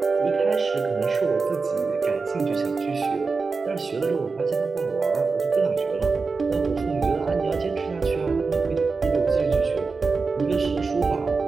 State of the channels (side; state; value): left; quieter; 4.4 dB